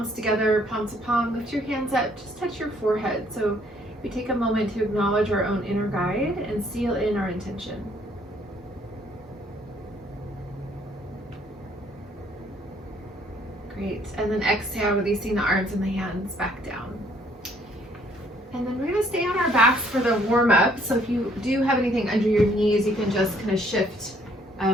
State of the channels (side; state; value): both; normal; correlation 0.64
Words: together, palm to palm, lift your hands up, just touch your forehead. So we take a moment to acknowledge our own inner guide and seal in our intention. Great, and then exhale, releasing the arms and the hands back down. And then we're gonna stay on our backs for the warm up. So if you do have anything under your knees, you can just kind of shift